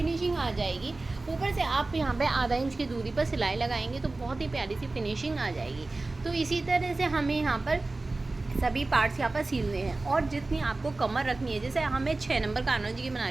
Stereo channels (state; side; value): quieter; left; 3.2 dB